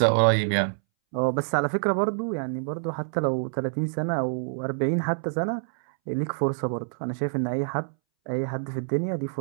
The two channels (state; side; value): silent; left; 61 dB below the other